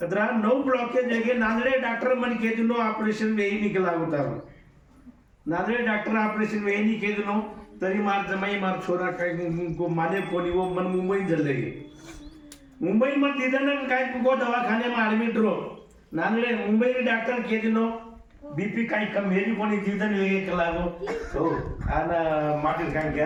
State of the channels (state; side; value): identical; both; correlation 1.00